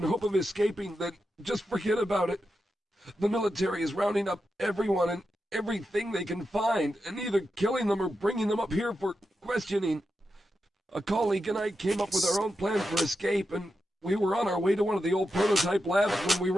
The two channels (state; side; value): normal; both; correlation 0.88